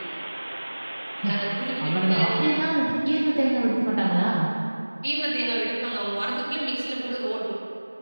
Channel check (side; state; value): both; inverted; correlation -1.00